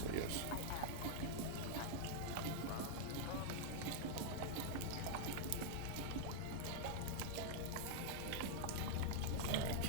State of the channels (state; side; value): different; both; correlation -0.01